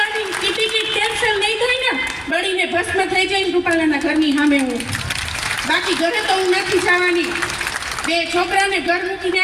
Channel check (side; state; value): both; identical; correlation 1.00